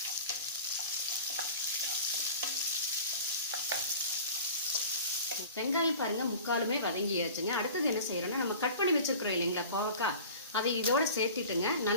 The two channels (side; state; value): both; inverted; correlation -0.40